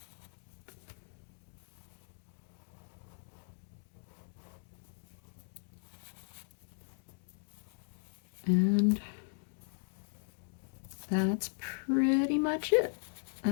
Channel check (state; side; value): silent; right; 53 dB below the other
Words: And that's pretty much it.